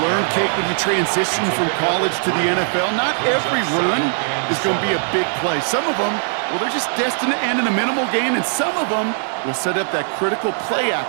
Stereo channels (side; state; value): left; silent; 66 dB below the other